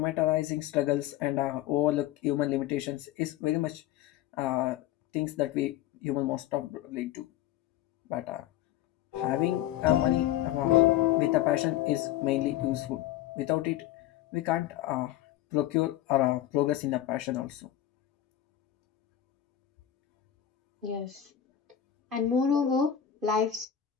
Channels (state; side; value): quieter; right; 12.0 dB